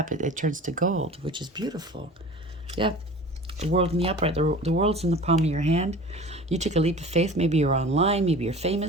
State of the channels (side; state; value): both; normal; correlation 0.40